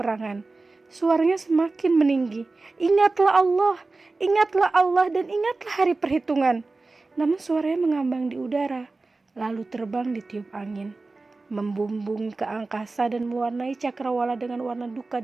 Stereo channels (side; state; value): left; quieter; 3.5 dB